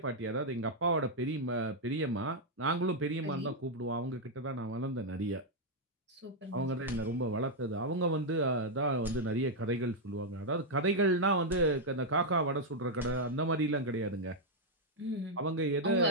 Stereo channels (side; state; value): both; normal; correlation -0.02